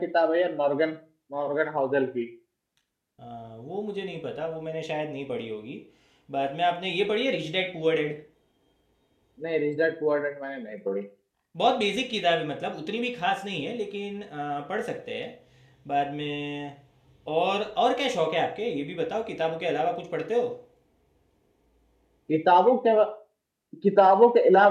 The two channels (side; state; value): both; identical; correlation 1.00